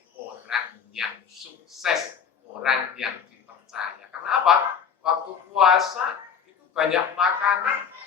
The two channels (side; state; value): right; quieter; 6.9 dB